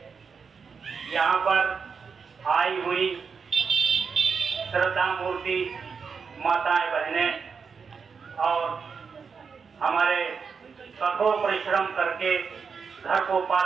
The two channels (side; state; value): left; quieter; 5.7 dB